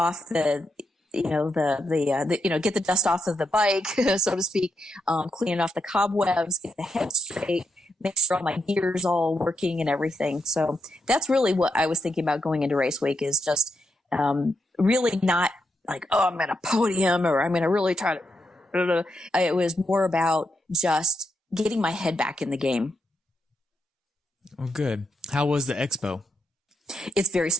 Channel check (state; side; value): normal; both; correlation 0.83